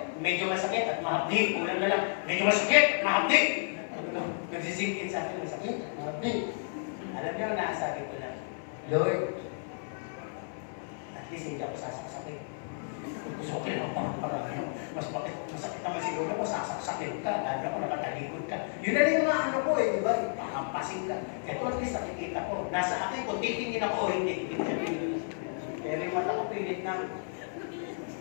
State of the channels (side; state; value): right; silent; 57 dB below the other